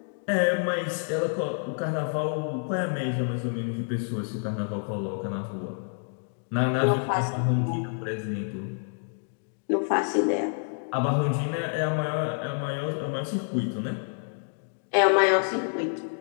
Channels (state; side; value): silent; right; 59 dB below the other